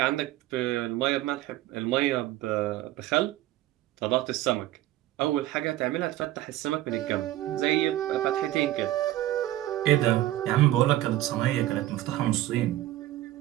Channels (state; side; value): quieter; left; 14.9 dB